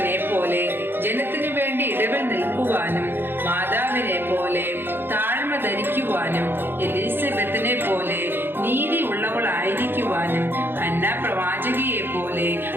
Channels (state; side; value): late; left; 0.10 ms